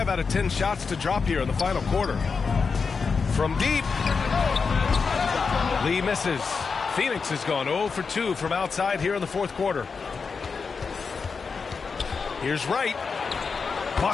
out of 10 shots to drop here in the final quarter. From deep. Lee misses. Phoenix has gone 0 for 2 from outside here in the fourth quarter. Here's Wright.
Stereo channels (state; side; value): quieter; right; 5.1 dB